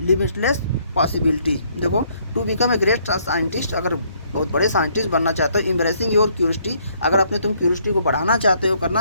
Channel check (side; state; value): both; inverted; correlation -0.67